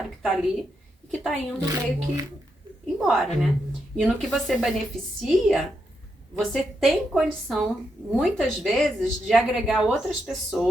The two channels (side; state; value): both; normal; correlation 0.82